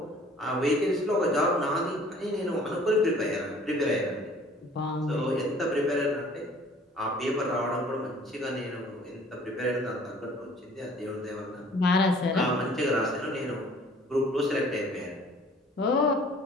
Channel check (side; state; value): both; normal; correlation 0.52